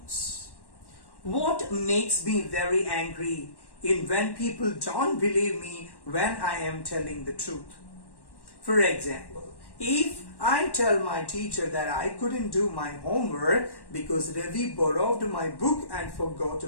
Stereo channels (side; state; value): right; late; 1.1 ms